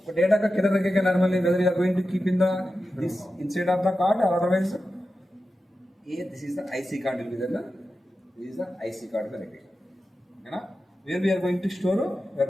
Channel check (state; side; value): normal; both; correlation 0.92